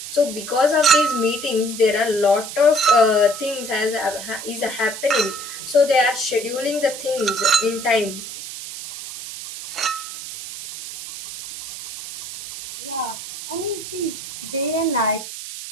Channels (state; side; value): noise; right; hiss, 10 dB below the sound